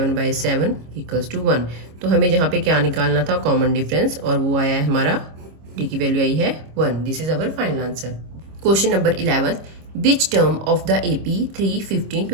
बाई 7 इक्वल्स टू 1. तो हमें जहाँ पे क्या निकालना था, कॉमन डिफरेंस, और वो आया है हमारा D की वैल्यू आई है 1. This is our final answer. Question number 11. Which term of the AP 3, 15,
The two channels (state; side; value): late; left; 26 ms